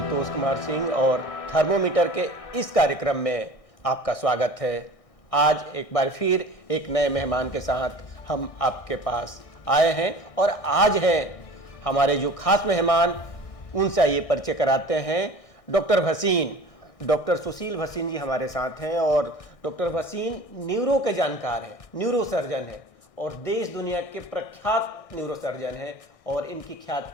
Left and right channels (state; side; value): late; right; 1.6 ms